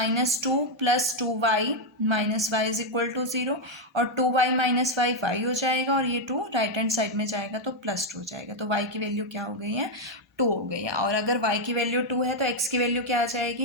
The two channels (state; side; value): normal; both; correlation 0.01